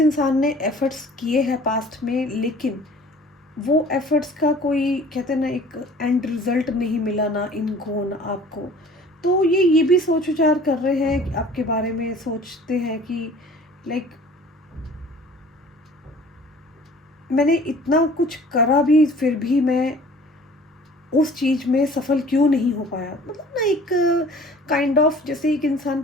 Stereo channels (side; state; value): both; normal; correlation 0.49